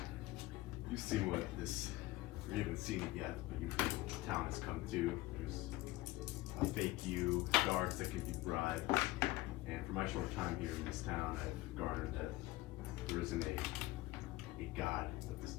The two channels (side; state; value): right; quieter; 18.6 dB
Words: You've seen what this, you haven't seen it yet, but you've heard what the town has come to. There's a fake you, guards that can be bribed, and for my short time here in this town, I've garnered that there isn't a god that this